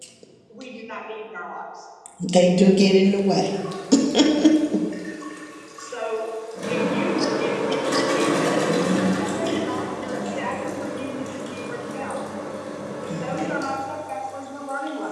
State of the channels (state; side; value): identical; both; correlation 1.00